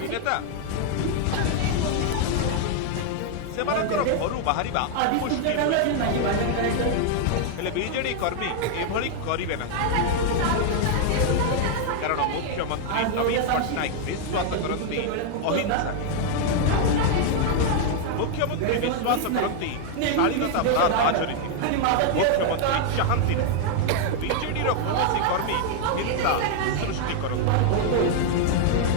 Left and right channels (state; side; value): different; both; correlation 0.00